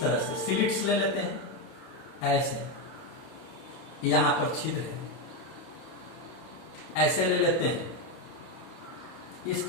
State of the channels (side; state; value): right; late; 31 ms